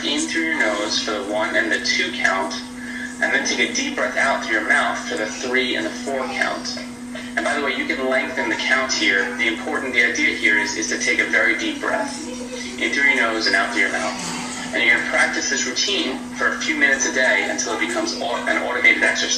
in through your nose for the 1 and the 2 count, and then take a deep breath out through your mouth for the 3 and the 4 count. And by the way, you can lengthen the count here. The idea here is to take a very deep breath. in through your nose and out through your mouth. And you're going to practice this routine for a few minutes a day until it becomes an automated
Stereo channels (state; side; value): identical; both; correlation 1.00